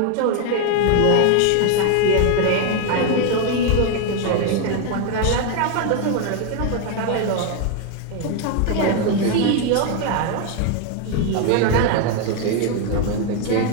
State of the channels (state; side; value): different; both; correlation 0.01